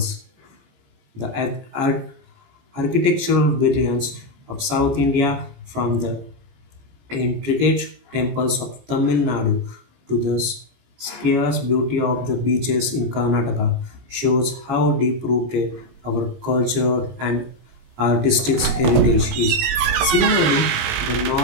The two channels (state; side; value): late; left; 17 ms